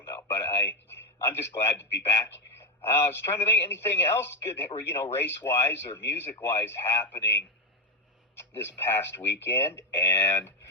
know. But I'm just glad to be back. I was trying to think anything else good, race-wise or music-wise happening this past weekend. And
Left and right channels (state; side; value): normal; both; correlation 0.09